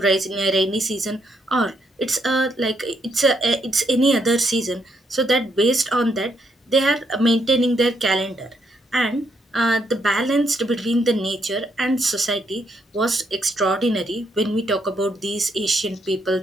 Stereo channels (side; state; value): both; normal; correlation 0.75